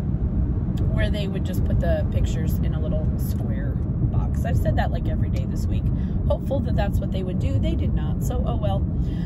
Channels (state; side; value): identical; both; correlation 1.00